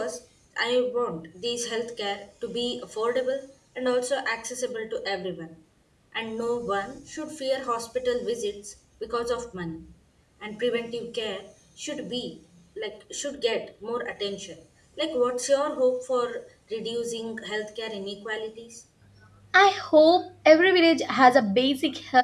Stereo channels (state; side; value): identical; both; correlation 1.00